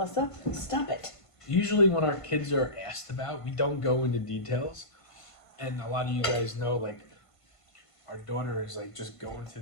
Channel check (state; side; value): late; right; 1.5 ms